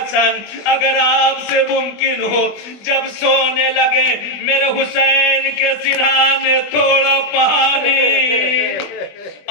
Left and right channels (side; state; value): right; late; 20 ms